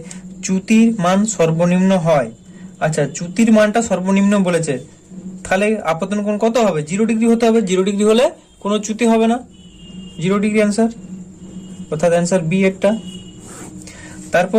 চ্যুতির মান সর্বনিম্ন হয়? আচ্ছা, চ্যুতির মানটা সর্বনিম্ন বলেছে, তাহলে আপাতন কোণ কত হবে? 0 ডিগ্রি হতে হবে। 0 ডিগ্রি হলে কোনো চ্যুতি হবে না, 0 ডিগ্রি অ্যান্সার, অর্থাৎ অ্যান্সার বি এরটা।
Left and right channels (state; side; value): identical; both; correlation 1.00